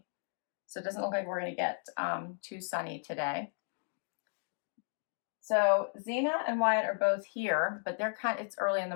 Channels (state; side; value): silent; right; digital silence